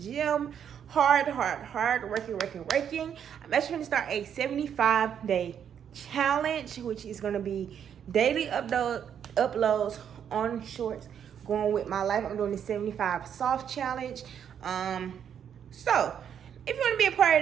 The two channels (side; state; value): left; quieter; 8.6 dB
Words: hard working. I'm actually going to start a 75-day challenge, which is going to be daily uploads on shorts, going with my life. I'm doing the 75 soft challenge. So if you want to be a part